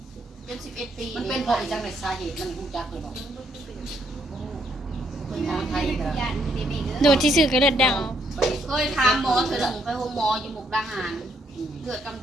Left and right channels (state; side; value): normal; both; correlation 0.72